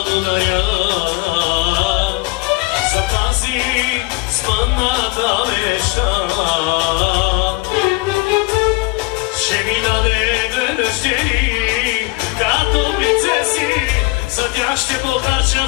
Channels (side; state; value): right; quieter; 24.3 dB